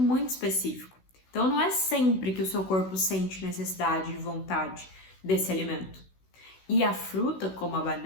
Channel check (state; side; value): late; right; 16 ms